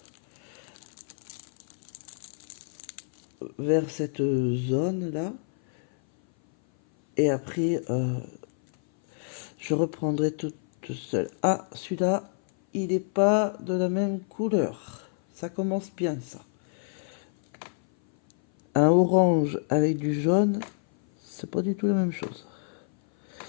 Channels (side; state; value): right; silent; 57 dB below the other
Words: Vers cette zone-là. Et après, je reprendrai tout seul. Ah, celui-là, il n'est pas de la même couleur. Ça commence bien, ça. Un orange avec du jaune, c'est pas du tout la même chose.